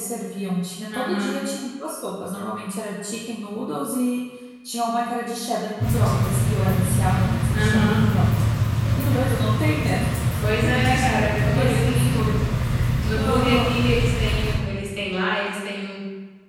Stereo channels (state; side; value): identical; both; correlation 1.00